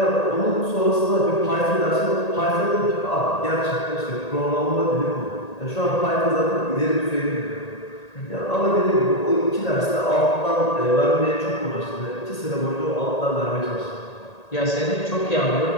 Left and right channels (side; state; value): right; late; 1.8 ms